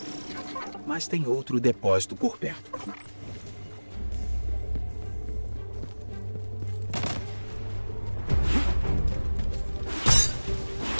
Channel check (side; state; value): both; inverted; correlation -1.00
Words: Mas tem outro depósito por perto.